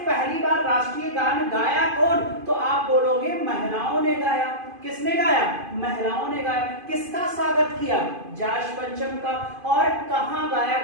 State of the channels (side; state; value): left; late; 2.5 ms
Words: पहली बार राष्ट्रीय गान गाया कौन? तो आप बोलोगे महिलाओं ने गाया। किसने गाया? महिलाओं ने गाया। किसका स्वागत किया? जॉर्ज पंचम का। और कहां गाया